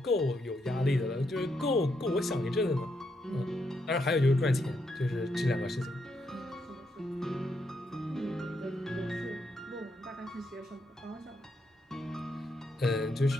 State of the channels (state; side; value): normal; both; correlation 0.79